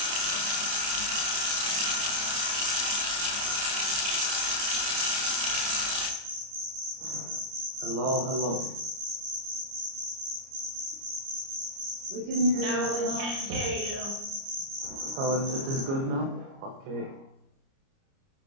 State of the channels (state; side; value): late; left; 29 ms